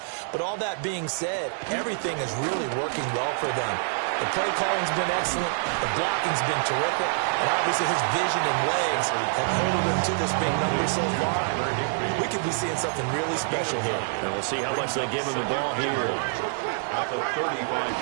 But all that being said, everything is really working well for them. The play calling's been excellent. The blocking's been terrific. And obviously his vision and legs have held him to this big number so far. We could be seeing something really special here. And we'll see how much they give him the ball here.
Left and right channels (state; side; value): silent; left; digital silence